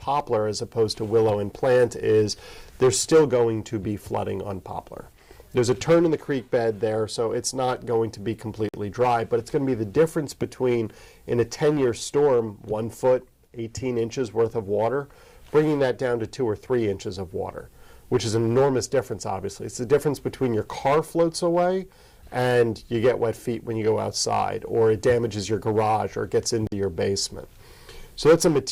as opposed to Willow and Plant is there's still going to be flooding on Poplar. There's a turn in the creek bed there, so it's not going to be completely dry, but it's going to be the difference between, in a 10-year storm, 1 foot, 18 inches worth of water, bringing that down to 2 or 3 inches of water, which is an enormous difference, obviously. It's the difference between your car floats away and you get wet feet when you go outside, or it damages your garage, or it gets into your basement. So that's a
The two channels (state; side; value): identical; both; correlation 1.00